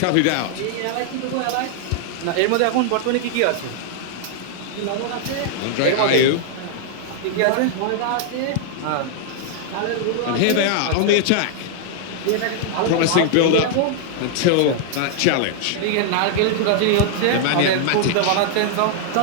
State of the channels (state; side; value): different; both; correlation 0.00